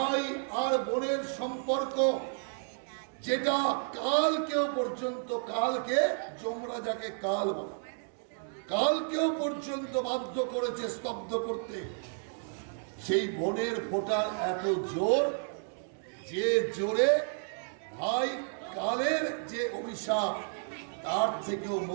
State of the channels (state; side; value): silent; left; 57 dB below the other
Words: আর বোনের সম্পর্ক, যেটা কালকেও পর্যন্ত, কালকে যমরাজাকে কাল বলে, কালকেও পর্যন্ত বাধ্য করেছে স্তব্ধ করতে, সেই বোনের ফোঁটার এত জোর, যে জোরে ভাই কালের যে অভিশাপ তার থেকেও